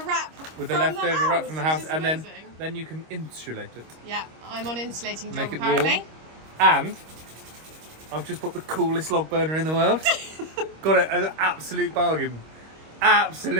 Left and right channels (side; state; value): left; late; 25 ms